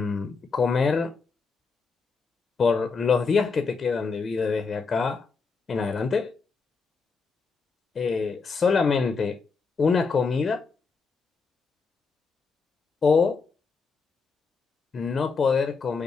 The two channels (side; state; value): right; quieter; 4.8 dB